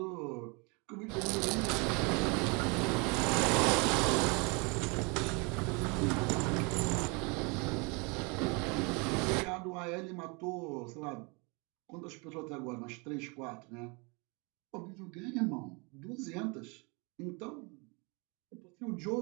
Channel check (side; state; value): left; quieter; 30.5 dB